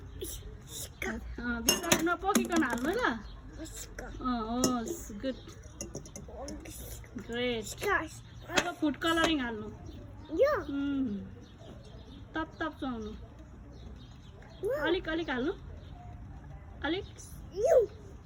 भित्र नपोकिकन हाल्नु ल गुड ग्रेट अब फुड कलरिङ हाल्नु तप तप चुहाउनु अलिक अलिक हाल्नु अलिक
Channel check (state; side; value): identical; both; correlation 1.00